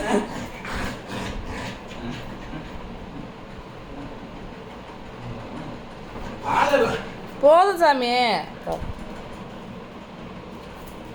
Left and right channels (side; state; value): both; identical; correlation 1.00